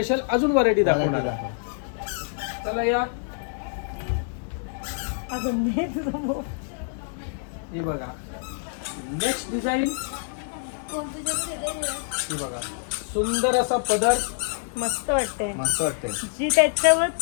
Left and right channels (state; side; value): silent; right; digital silence